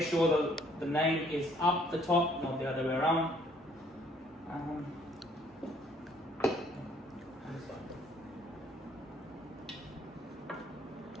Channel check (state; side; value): normal; both; correlation 0.62